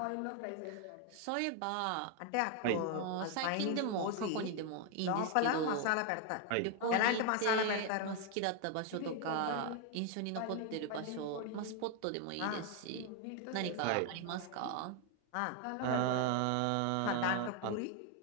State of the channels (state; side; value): different; both; correlation 0.01